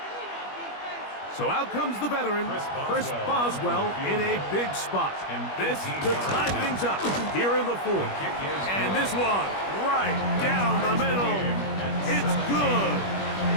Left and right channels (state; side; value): late; right; 21 ms